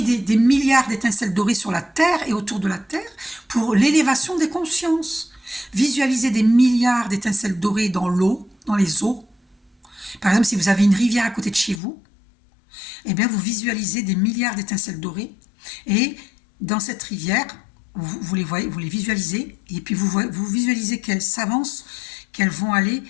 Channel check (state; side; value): drops out; right; at 11.8 s